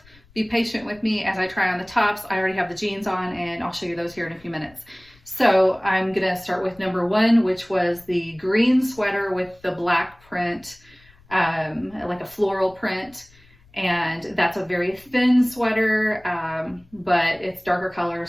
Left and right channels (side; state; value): left; noise; rumble, 28 dB below the sound